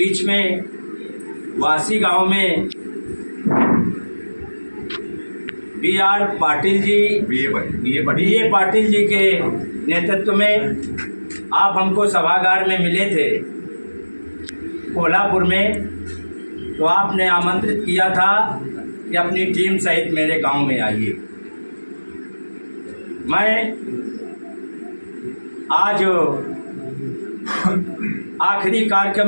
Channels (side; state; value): both; inverted; correlation -1.00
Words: में वासी गांव में बी.आर. पाटिल जी, बी.ए. पाटिल जी के नेतृत्व में आप हमको सभागार में मिले थे कोल्हापुर में, तो आपने आमंत्रित किया था कि अपनी टीम सहित मेरे गांव में आइए। मैं आज आखिरी